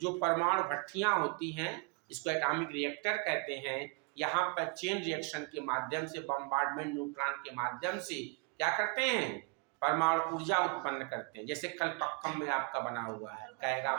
जो परमाणु भट्टियां होती हैं, इसको एटॉमिक रिएक्टर कहते हैं। यहाँ पर चेन रिएक्शन के माध्यम से, बम्बार्डमेंट न्यूट्रॉन के माध्यम से क्या करते हैं, परमाणु ऊर्जा उत्पन्न करते हैं। जैसे कलपक्कम में आपका बना हुआ है, कैगा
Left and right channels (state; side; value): quieter; left; 33.1 dB